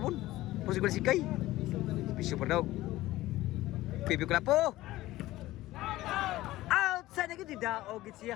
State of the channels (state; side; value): quieter; right; 16.8 dB